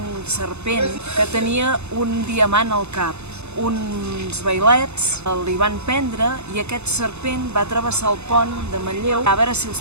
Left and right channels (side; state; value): left; late; 0.81 ms